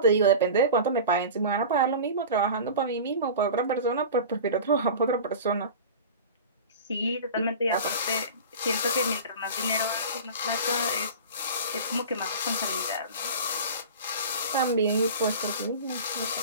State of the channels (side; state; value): both; inverted; correlation -0.34